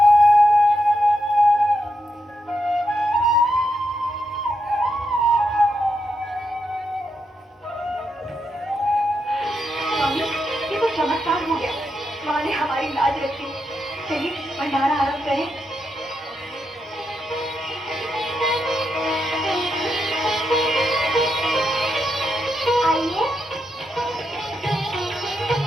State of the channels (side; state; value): both; normal; correlation 0.83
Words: स्वामी, ये तो चमत्कार हो गया। माँ ने हमारी लाज रखी। चलिए भंडारा आरंभ करें। आइए।